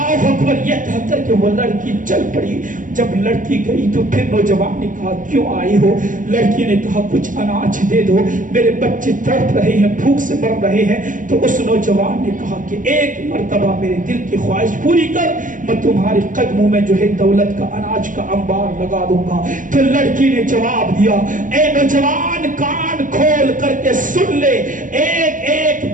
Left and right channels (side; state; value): left; late; 0.38 ms